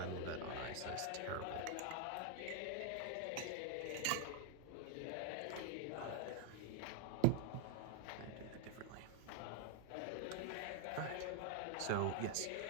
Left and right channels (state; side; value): different; both; correlation 0.00